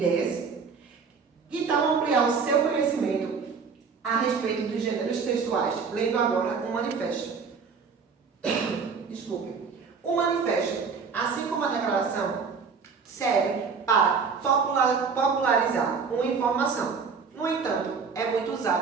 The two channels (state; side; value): quieter; left; 5.5 dB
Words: Que tal ampliar o seu conhecimento a respeito dos gêneros textuais, lendo agora um manifesto? Desculpe. O manifesto, assim como a declaração, serve para popularizar uma informação. No entanto, é muito